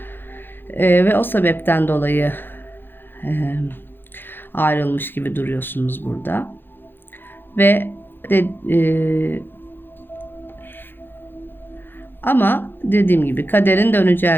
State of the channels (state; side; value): late; right; 0.099 ms